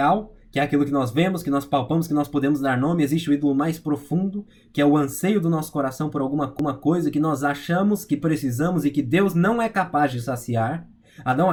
que é aquilo que nós vemos, que nós palpamos, que nós podemos dar nome. Existe o ídolo mais profundo, que é o anseio do nosso coração por alguma coisa que nós achamos que precisamos e que Deus não é capaz de saciar. Adão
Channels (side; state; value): both; identical; correlation 1.00